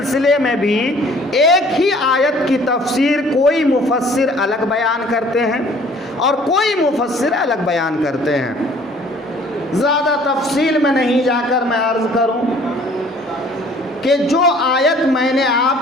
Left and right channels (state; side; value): normal; both; correlation 0.54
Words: میں بھی ایک ہی آیت کی تفسیر کوئی مفسر الگ بیان کرتے ہیں اور کوئی مفسر الگ بیان کرتے ہیں۔ زیادہ تفصیل میں نہیں جا کر میں عرض کروں کہ جو آیت میں نے